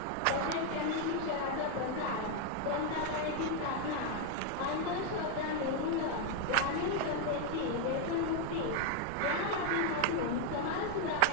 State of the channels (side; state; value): both; different; correlation 0.00